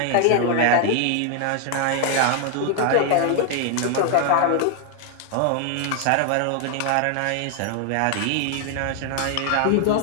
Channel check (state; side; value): different; both; correlation 0.00